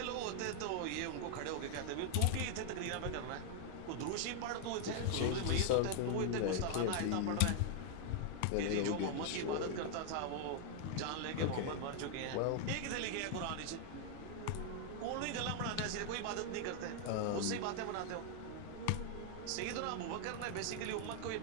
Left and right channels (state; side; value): different; both; correlation 0.00